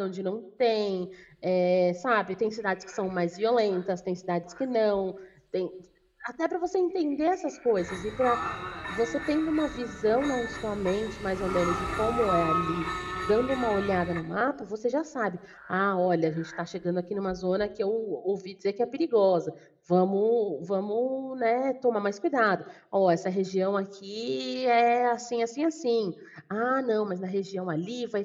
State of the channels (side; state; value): both; identical; correlation 1.00